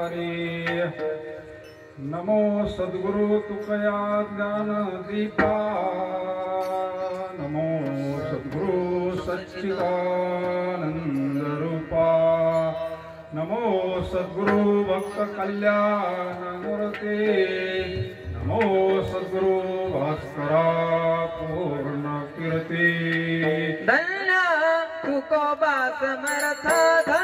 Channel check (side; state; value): both; identical; correlation 1.00